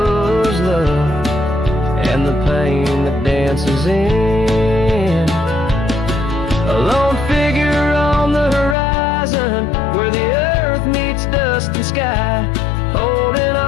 love and the pain that dances in. A lone figure on the horizon where the earth meets dust and sky, holding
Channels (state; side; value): drops out; right; at 8.8 s